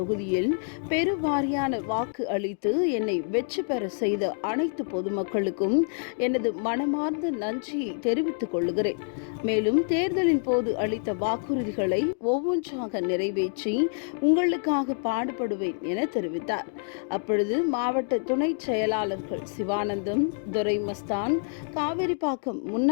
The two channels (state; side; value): silent; right; 57 dB below the other